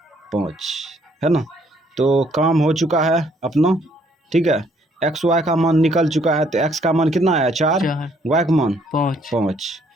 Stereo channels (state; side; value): normal; both; correlation 0.66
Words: 5 है ना। तो काम हो चुका है अपना, ठीक है। x y का मान निकल चुका है, तो x का मान कितना आया, 4, y का मान 5।